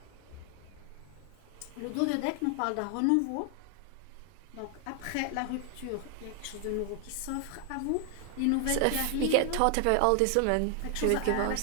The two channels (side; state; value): both; different; correlation 0.00